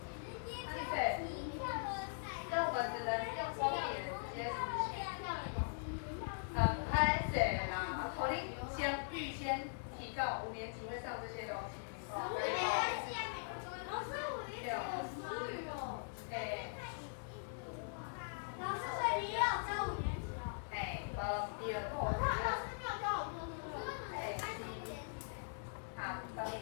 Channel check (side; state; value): right; silent; digital silence